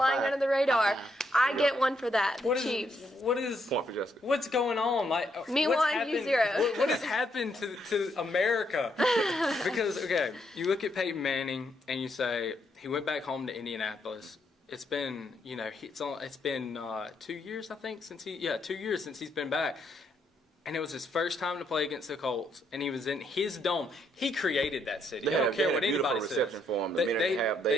under the radar. I get one for that. The Chiefs. What is point for Jessica? What's going on? Me what's 1, happened, you 0. What has happened to America? Because you look at Peyton Manning and you say he went back home to Indianapolis. It's been it's been 2 years I think 2 years since he's been back. And it was his first time to play against the Colts, and he was in his dome. He created that city. I don't care what anybody says. Reception for him. They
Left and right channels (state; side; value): normal; both; correlation 0.75